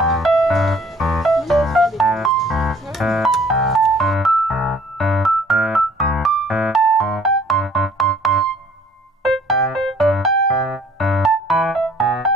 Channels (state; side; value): normal; both; correlation 0.56